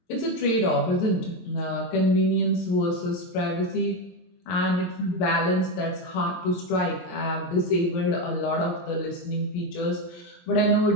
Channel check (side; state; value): right; late; 23 ms